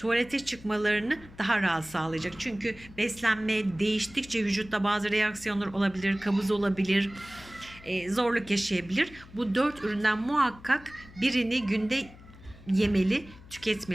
çıkmalarını daha rahat sağlayacak. Çünkü beslenme değiştikçe vücutta bazı reaksiyonlar olabilir, kabız olabilir, zorluk yaşayabilir. Bu 4 üründen muhakkak birini günde yemeli,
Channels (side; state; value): left; noise; hum, 20 dB below the sound